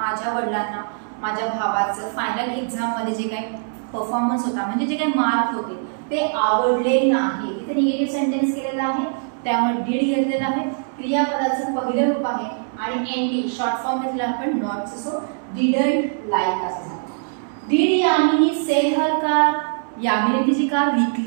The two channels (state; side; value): silent; left; digital silence